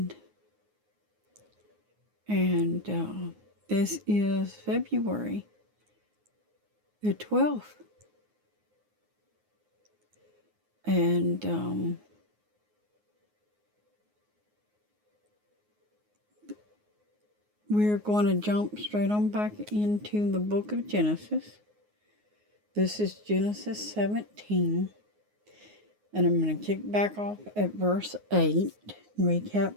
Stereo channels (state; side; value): late; left; 9.5 ms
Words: And this is February the 12th. And we're going to jump straight on back into the book of Genesis. This is Genesis 17. And I'm going to kick back off at verse 8, recap